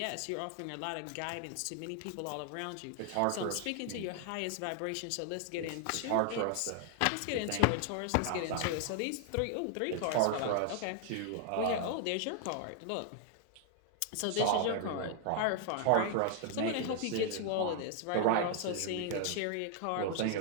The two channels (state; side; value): different; both; correlation 0.00